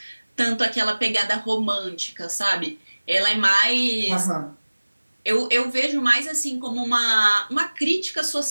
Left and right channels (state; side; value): inverted; both; correlation -1.00